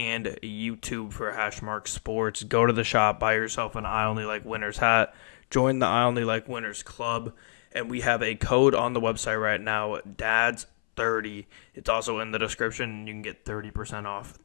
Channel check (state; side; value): silent; right; 60 dB below the other